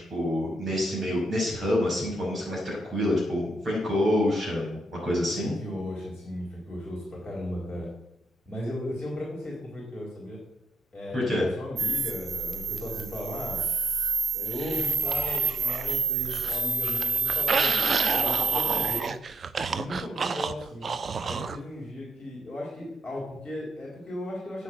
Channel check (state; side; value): normal; both; correlation 0.80